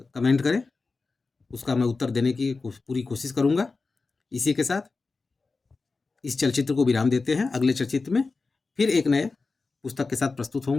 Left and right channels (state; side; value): quieter; right; 4.0 dB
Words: कमेंट करें, उसका मैं उत्तर देने की पूरी कोशिश करूँगा। इसी के साथ इस चलचित्र को विराम देते हैं, अगले चलचित्र में फिर एक नए पुस्तक के साथ प्रस्तुत